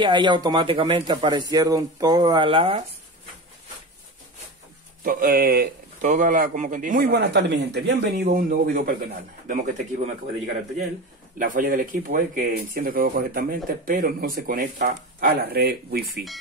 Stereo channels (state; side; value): normal; both; correlation 0.26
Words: ahí automáticamente aparecieron todas las... como que dice. Muy buenas tardes, mi gente. Bienvenido a un nuevo video para el canal. Vemos que este equipo me acaba de llegar al taller. La falla del equipo es que enciende todo correctamente, pero no se conecta a la red Wi-Fi.